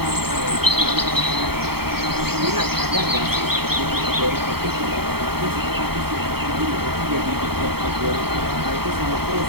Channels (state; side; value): late; left; 0.95 ms